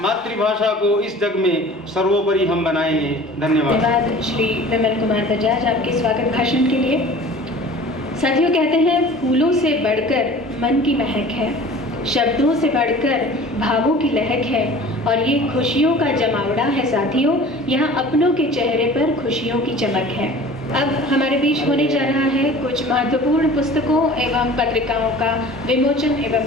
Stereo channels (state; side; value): normal; both; correlation 0.43